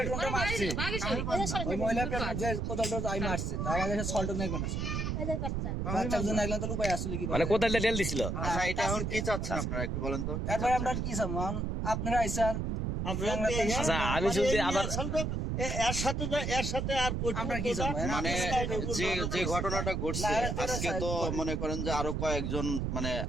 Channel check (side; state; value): right; noise; rumble, 1 dB below the sound